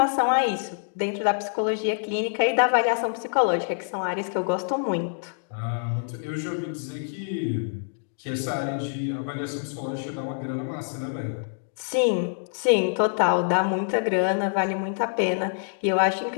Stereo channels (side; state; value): right; silent; digital silence